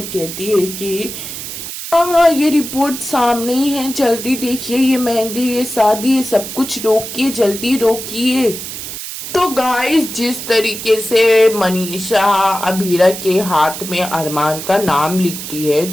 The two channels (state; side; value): noise; right; hiss, 8 dB below the sound